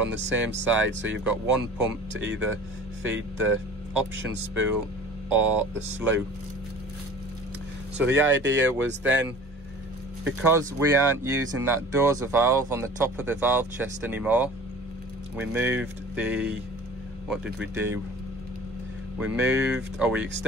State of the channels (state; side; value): normal; both; correlation 0.44